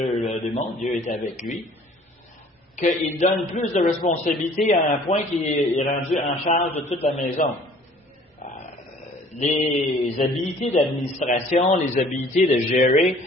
démontrent. Dieu est avec lui. Qu'il donne plus de responsabilités à un point qu'il est rendu en charge de toute la maison. Les habilités d'administration, les habilités de gérer,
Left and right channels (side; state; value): both; normal; correlation 0.53